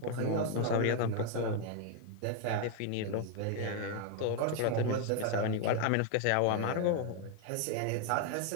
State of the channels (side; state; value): both; different; correlation 0.00